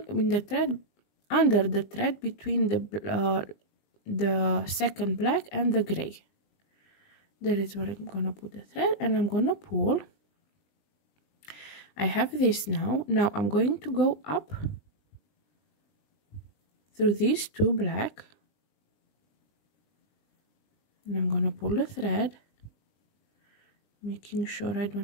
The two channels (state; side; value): late; right; 20 ms